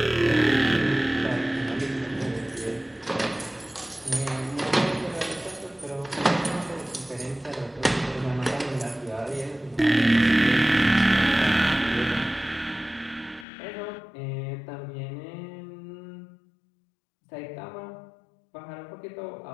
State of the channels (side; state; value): right; drops out; at 13.5 s